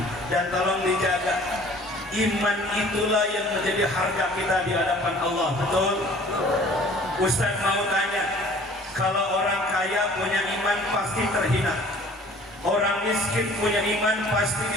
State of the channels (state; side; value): normal; both; correlation 0.50